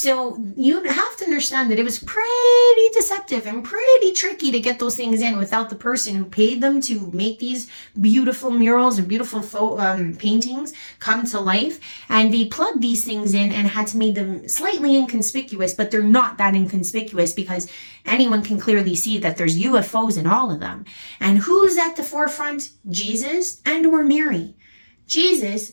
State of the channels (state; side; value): inverted; both; correlation -1.00